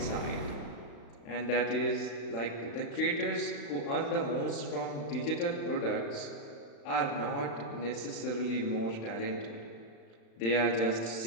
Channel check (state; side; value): late; right; 35 ms